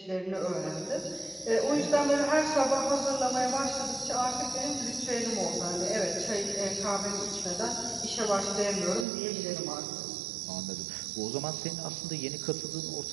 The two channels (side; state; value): left; drops out; at 9.1 s